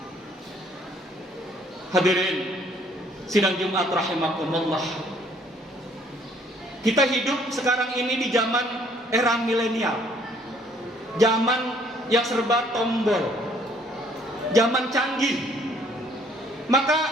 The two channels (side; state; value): both; normal; correlation 0.62